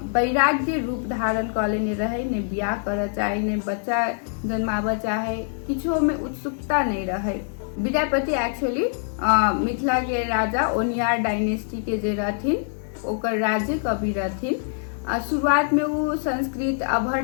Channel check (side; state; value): right; silent; digital silence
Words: वैराग्य रूप धारण कऽ लेने रहे, ने बियाह करऽ चाहे, ने बच्चा जन्माबऽ चाहे, किछो में उत्सुकता नहीं रहे। विद्यापति एक्चुअली मिथिला के राजा ओनियार डायनेस्टी के जे रहथिन ओकर राज्य कवि रहथिन। शुरुआत में वो संस्कृत